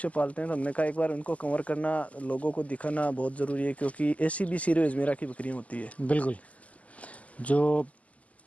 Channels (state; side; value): late; right; 0.070 ms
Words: पालते हैं। तो हमने कहा एक बार उनको कवर करना, लोगों को दिखाना बहुत ज़रूरी है, क्योंकि ऐसी भी सिरो अजमेरा की बकरियाँ होती है। बिल्कुल, जो